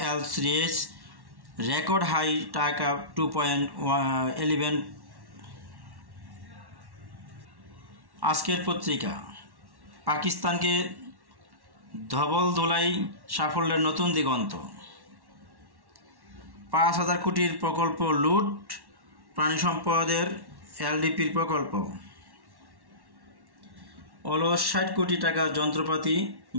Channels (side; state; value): left; late; 1.1 ms